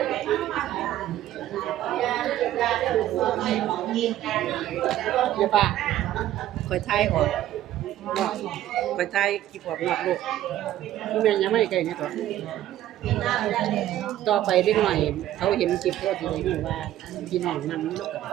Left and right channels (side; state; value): left; quieter; 13.2 dB